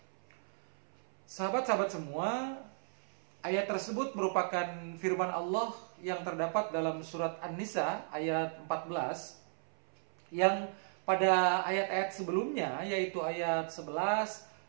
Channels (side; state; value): left; silent; 55 dB below the other